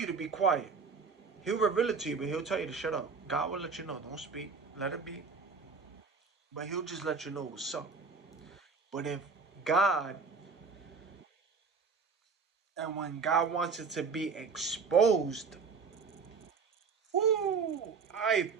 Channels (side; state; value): left; quieter; 5.1 dB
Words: to be quiet. He'll reveal it to you, but he'll tell you to shut up. God will let you know. Don't speak. Let it be. But he'll just let you know what's up. But if God, and when God wants it to be exposed, whoo, ay